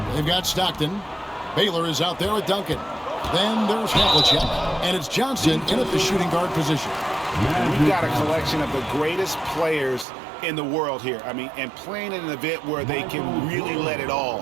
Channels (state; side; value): drops out; left; at 10.1 s